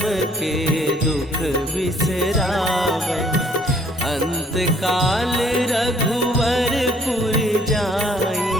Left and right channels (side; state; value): both; normal; correlation 0.62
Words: के दुख बिसरावे। अंत काल रघुवरपुर जाई,